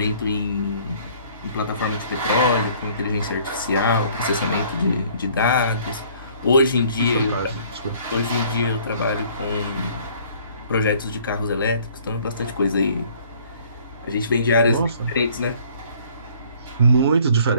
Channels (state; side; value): inverted; both; correlation -0.57